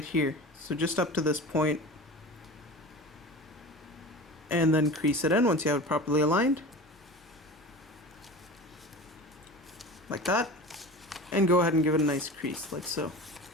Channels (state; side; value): normal; both; correlation 0.34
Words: here. So just up to this point. And then crease it in once you have it properly aligned. Like that. And go ahead and give it a nice crease, like so.